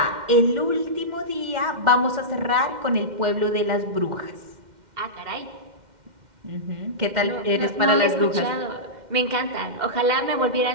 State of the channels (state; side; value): late; left; 2.1 ms